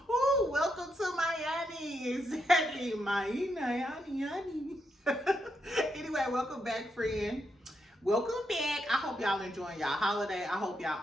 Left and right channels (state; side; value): normal; both; correlation 0.81